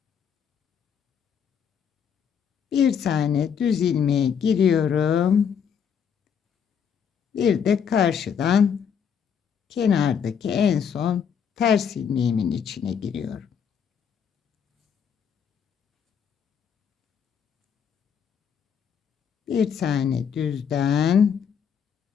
Bir tane düz ilmeğe giriyorum. Bir de karşıdan kenardaki en son ters ilmeğimin içine giriyorum. Bir tane düzden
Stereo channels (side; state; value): right; quieter; 7.4 dB